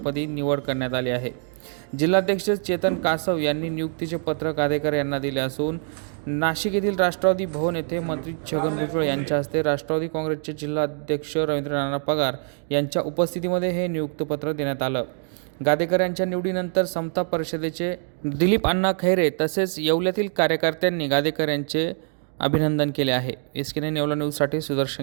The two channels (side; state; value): left; silent; 59 dB below the other